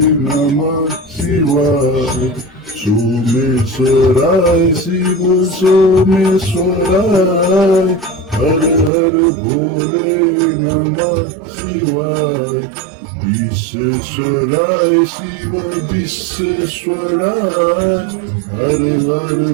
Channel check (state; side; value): drops out; left; at 8.9 s